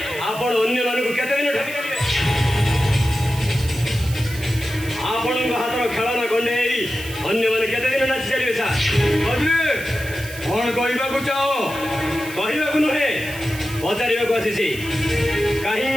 ଆପଣ ଅନ୍ୟମାନଙ୍କୁ କେତେ ଦିନ ଠକି ଚାଲିବେ? ଆପଣଙ୍କ ହାତର ଖେଳନା ଗଣ୍ଡେଇ ଅନ୍ୟମାନେ କେତେ ଦିନ ନାଚି ଚାଲିବେ ସାର୍? କଣ କହିବାକୁ ଚାହ? କହିବାକୁ ନୁହେଁ, ପଚାରିବାକୁ ଆସିଛି।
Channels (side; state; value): right; noise; hiss, 14 dB below the sound